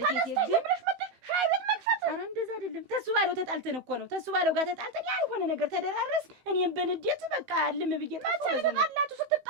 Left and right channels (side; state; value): left; late; 17 ms